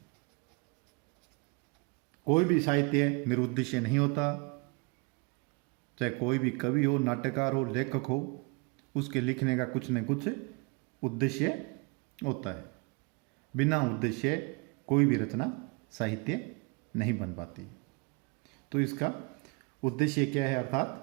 कोई भी साहित्य निरुद्देश्य नहीं होता, चाहे कोई भी कवि हो, नाटककार हो, लेखक हो, उसके लिखने का कुछ न कुछ उद्देश्य होता है। बिना उद्देश्य कोई भी रचना साहित्य नहीं बन पाती। तो इसका उद्देश्य क्या है,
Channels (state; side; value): quieter; left; 29.3 dB